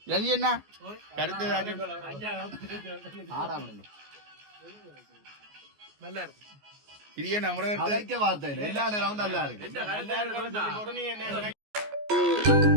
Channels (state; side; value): late; left; 14 ms